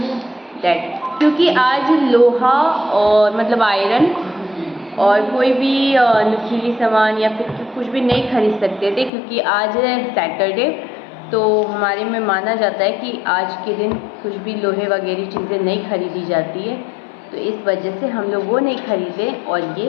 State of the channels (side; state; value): right; drops out; at 9.1 s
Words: दैट, क्योंकि आज लोहा और मतलब आयरन और कोई भी नुकीली सामान या फिर कुछ भी नहीं खरीद सकते थे क्योंकि आज है सैटरडे। तो हमारे में माना जाता है कि आज के दिन कुछ भी लोहे वगैरह चीज़ें नहीं खरीदी जाती है, तो इस वजह से हम लोग वो नहीं खरीदे। और